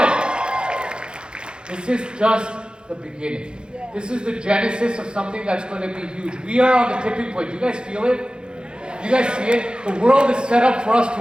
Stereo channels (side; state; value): left; late; 0.050 ms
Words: this is just the beginning. This is the genesis of something that's going to be huge. We are on the tipping point. You guys feel it? You guys see it? The world is set up for us to